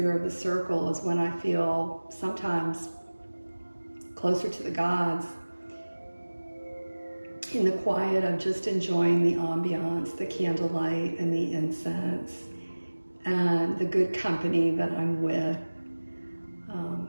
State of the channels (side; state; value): both; inverted; correlation -1.00